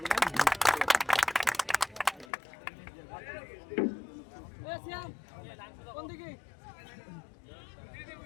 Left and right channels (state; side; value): drops out; right; at 2.2 s